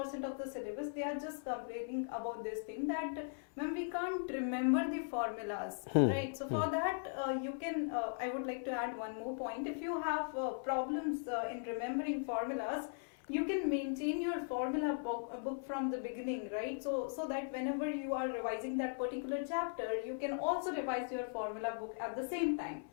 of the syllabus, they are just complaining about this thing that ma'am, we can't remember the formulas, right? So for that you can, I would like to add one more point. If you have problems in remembering formulas, you can maintain your formula book from the beginning, right? So that whenever you are revising that particular chapter, you can also revise your formula book at the same time,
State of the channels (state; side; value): silent; right; 52 dB below the other